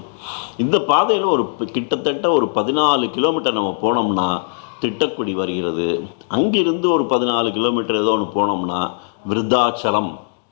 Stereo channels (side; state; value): right; silent; digital silence